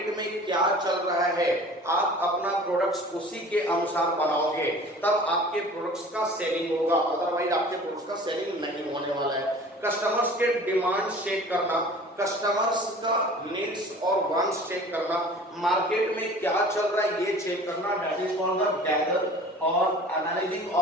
में क्या चल रहा है। आप अपना प्रोडक्ट्स उसी के अनुसार बनाओगे, तब आपके प्रोडक्ट्स का सेलिंग होगा, अदरवाइज आपके प्रोडक्ट्स का सेलिंग नहीं होने वाला है। कस्टमर्स के डिमांड चेक करना, कस्टमर्स का नीड्स और वांट्स चेक करना, मार्केट में क्या चल रहा है ये चेक करना, that is called the gather और एनालाइजिंग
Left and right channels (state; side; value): normal; both; correlation 0.44